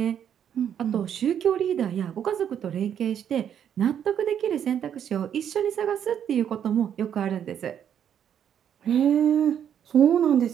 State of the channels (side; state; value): left; quieter; 9.1 dB